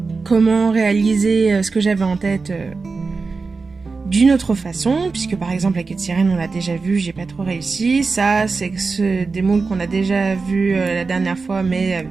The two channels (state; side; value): quieter; left; 4.3 dB